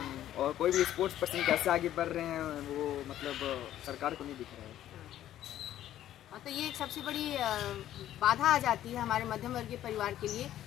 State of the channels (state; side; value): quieter; right; 12.4 dB